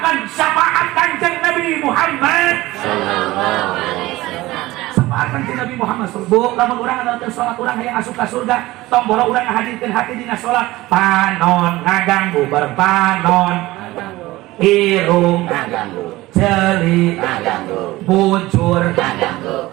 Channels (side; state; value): left; quieter; 18.5 dB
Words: Syafaat kanjeng Nabi Muhammad sallallahu alaihi wasallam. Syafaat kanjeng Nabi Muhammad sallallahu. Lamun urang adalah sholat urang yang asup ka surga, tong boro urang ngahadirkeun hati dina sholat. Panon ngaganggu bareng panon. Irung ngaganggu, celi ngaganggu, bujur ngaganggu.